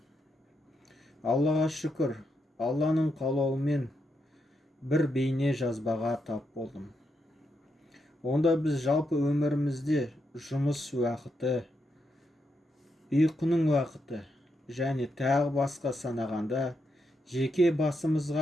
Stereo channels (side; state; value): both; normal; correlation 0.82